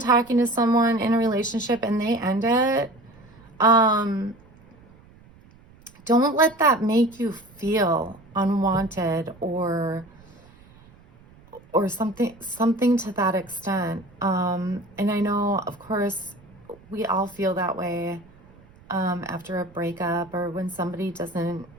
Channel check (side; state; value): right; noise; rumble, 26 dB below the sound